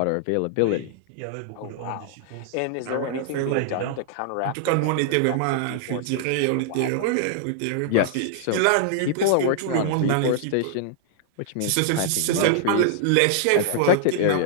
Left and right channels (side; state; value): both; different; correlation -0.01